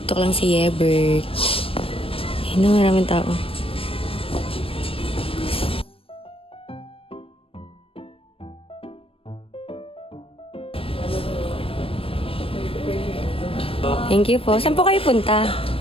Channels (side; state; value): right; late; 0.27 ms